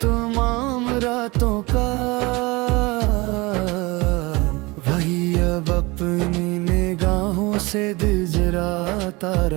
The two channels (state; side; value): quieter; left; 24.0 dB